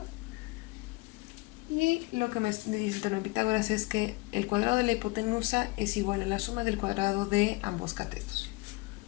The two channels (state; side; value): quieter; right; 24.4 dB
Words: Y lo que me dice el teorema de Pitágoras es que el cuadrado de la hipotenusa es igual a la suma del cuadrado de ambos catetos.